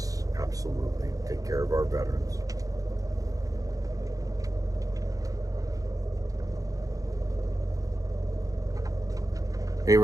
absolutely. Take care of our veterans. Hey,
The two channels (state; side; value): late; left; 0.17 ms